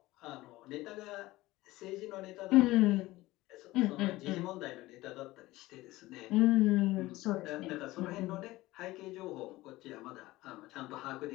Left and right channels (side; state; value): right; quieter; 18.4 dB